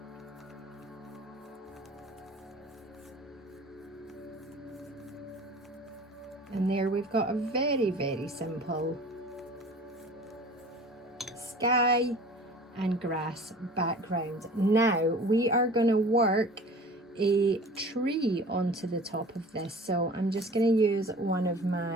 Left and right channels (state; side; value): normal; both; correlation 0.43